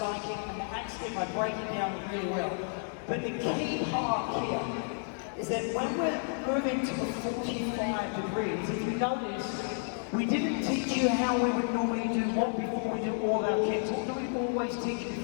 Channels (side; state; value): right; silent; 57 dB below the other